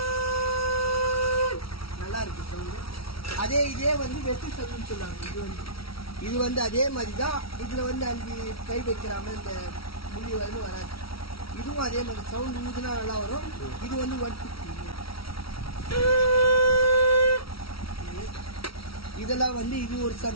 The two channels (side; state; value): right; late; 0.75 ms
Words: இருக்கு சவுண்டு. இதே வந்து வெட்டு சங்குன்னு சொல்லுவாங்க. இது வந்து அதே மாதிரி தான். இதில் வந்து 5 கை வைக்கிறாம இந்த முடி வந்து வராது. இதுவும் அதே மாதிரி சவுண்டு ஊதுனா நல்லா வரும். இது வந்து 150. இதெல்லாம் வந்து இது ஒரு